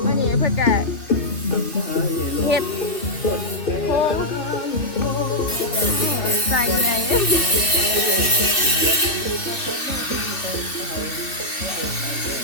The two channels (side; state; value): right; late; 2.9 ms